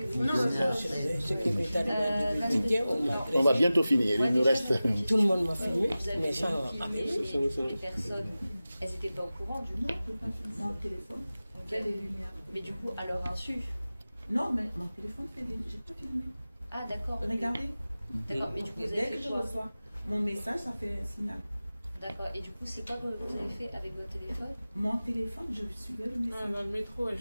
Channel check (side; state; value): both; inverted; correlation -0.96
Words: On va bientôt finir, il nous reste... Tout le monde m'a filmé, mais sans les personnes, elles n'étaient pas au courant du nom. Mon téléphone fait des lumières. Mais du coup, à leur insu. Non, mais mon téléphone fait des... J'ai pas filmé. Ah, d'accord. Regardez. D'accord, mais du coup, vous dès avez que fait je quoi? reçois mon message, ça fait un signal. D'accord, et du coup, c'est quoi que vous avez fait avec votre téléphone? Mon téléphone, je suivais le message. Dans le métro,